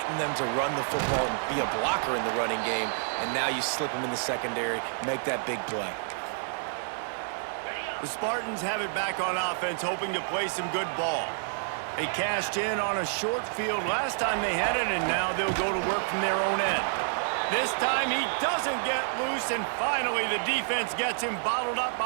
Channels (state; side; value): silent; left; digital silence